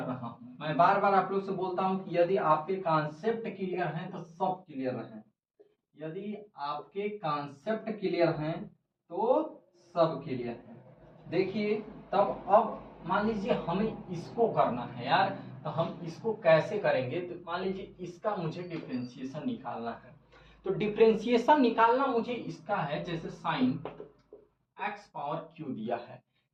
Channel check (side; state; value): both; identical; correlation 1.00